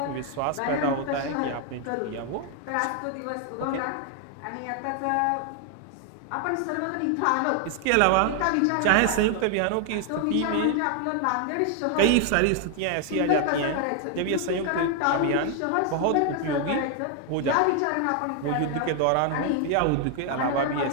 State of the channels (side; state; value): both; different; correlation 0.00